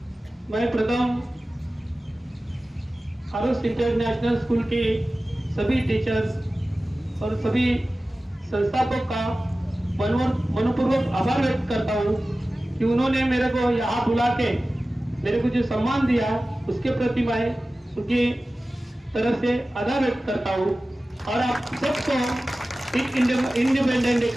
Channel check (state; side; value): normal; both; correlation 0.96